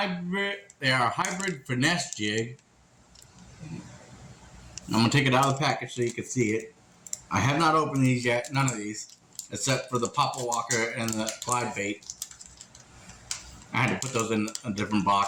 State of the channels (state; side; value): identical; both; correlation 1.00